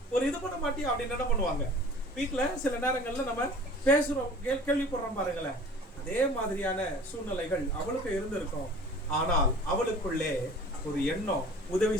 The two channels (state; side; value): normal; both; correlation 0.45